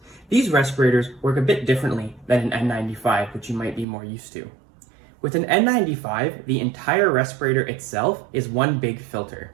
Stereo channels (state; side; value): drops out; left; at 3.9 s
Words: These respirators work a bit differently than an N95, which you might be more used to. With an N95, the entire respirator itself is one big filter.